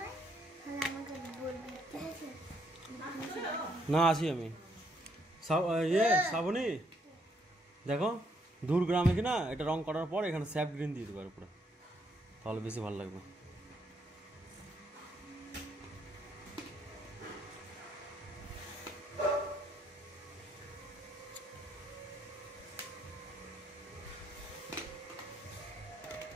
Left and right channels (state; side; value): normal; both; correlation 0.72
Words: তাহলে আমাকে বলবি, ঠিক আছে? না আছি আমি। শ্রাবণী দেখো দূর গ্রামে কিনা এটা রং করার পর এখানে স্যাপ গ্রিন দিয়ে দেবো পুরো, তাহলে বেশি ভালো লাগবে।